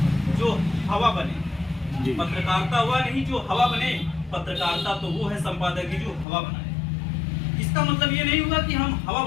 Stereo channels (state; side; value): drops out; right; at 6.2 s